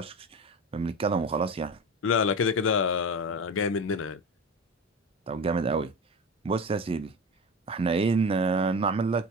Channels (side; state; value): both; normal; correlation 0.27